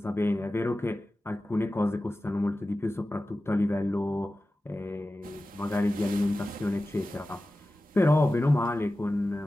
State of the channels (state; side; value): normal; both; correlation 0.95